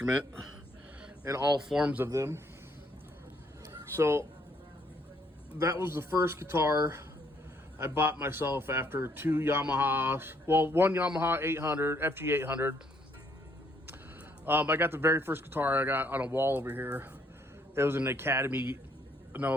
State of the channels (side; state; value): both; normal; correlation 0.68